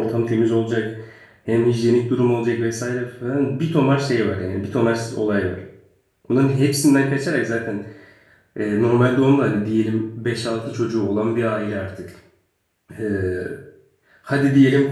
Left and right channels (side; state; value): both; identical; correlation 1.00